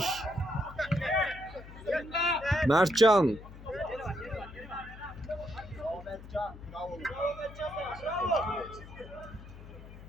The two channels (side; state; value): left; noise; hum, 16 dB below the sound